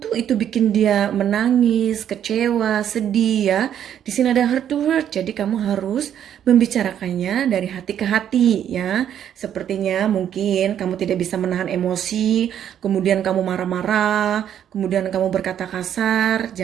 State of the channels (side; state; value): left; quieter; 9.8 dB